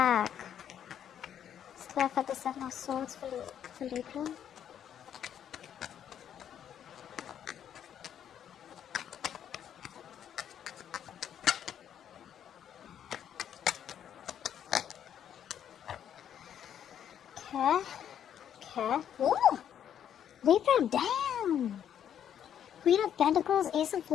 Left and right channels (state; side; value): quieter; right; 9.5 dB